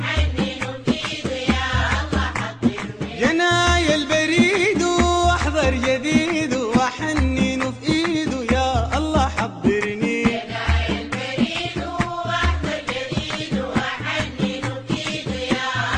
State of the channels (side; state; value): both; identical; correlation 1.00